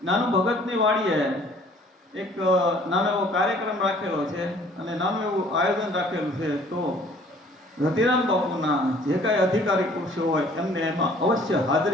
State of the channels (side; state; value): both; normal; correlation 0.55